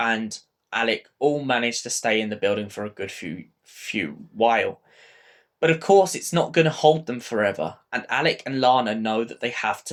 Alec all manage to stay in the building for a good few while. But of course, it's not going to hold them forever, and Alec and Lana know that they have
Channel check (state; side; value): identical; both; correlation 1.00